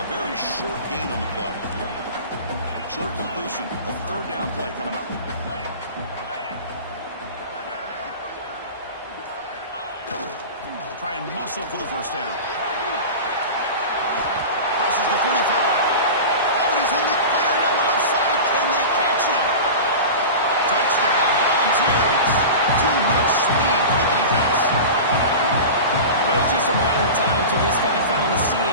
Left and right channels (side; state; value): both; inverted; correlation -0.30